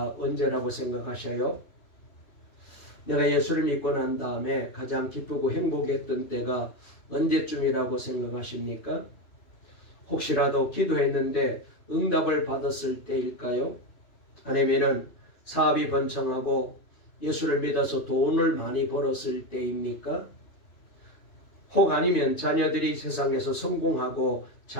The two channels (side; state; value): right; late; 2.9 ms